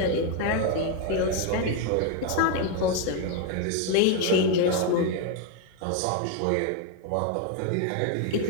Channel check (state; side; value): different; both; correlation 0.01